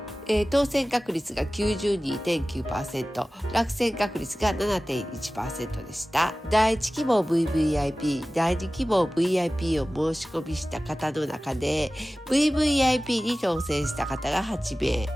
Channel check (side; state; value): both; normal; correlation 0.97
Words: 当選確率が 92.9%、落選確率が 7.1% でした。第1希望 VVIP、第2希望 VIP を申し込みした方の中で VVIP に当選した方が8名、